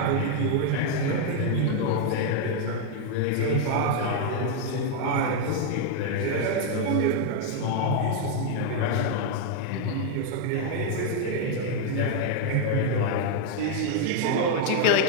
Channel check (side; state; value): both; different; correlation 0.00